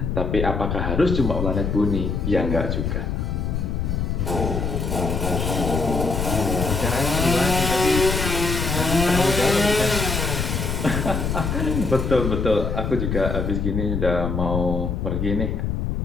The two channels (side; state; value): left; noise; rumble, 1 dB below the sound